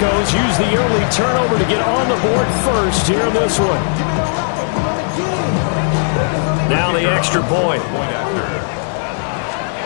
use the early turnover to get on the board first here in this one. Now the extra point.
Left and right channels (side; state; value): right; silent; digital silence